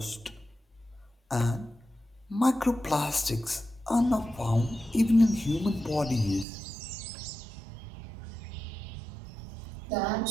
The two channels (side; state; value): left; drops out; at 6.5 s